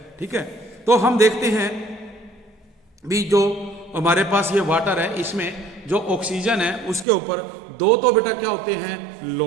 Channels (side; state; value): left; drops out; at 7.1 s